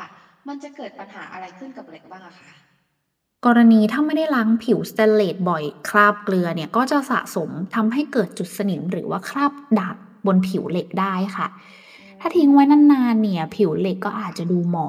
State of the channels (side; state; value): both; identical; correlation 1.00